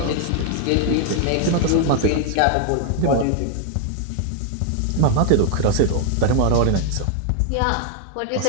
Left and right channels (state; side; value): different; both; correlation 0.00